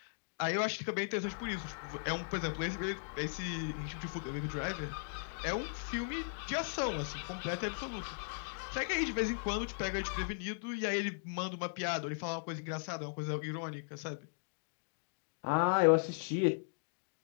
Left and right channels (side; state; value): right; silent; digital silence